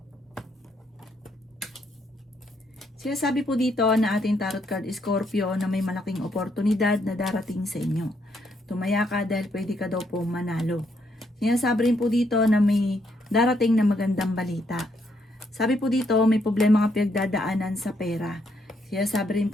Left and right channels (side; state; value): both; normal; correlation 0.74